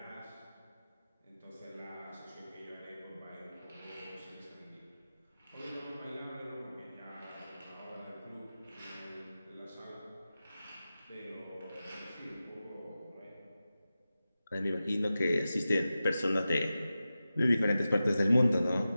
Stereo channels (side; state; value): both; inverted; correlation -0.94